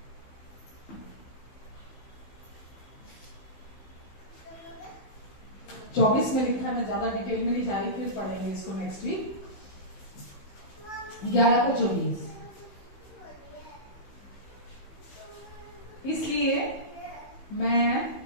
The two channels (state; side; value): late; right; 15 ms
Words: 24 में लिखा है, मैं ज्यादा डिटेल में नहीं जा रही, फिर पढ़ेंगे इसको नेक्स्ट वीक। 11 का 24। इसलिए मैं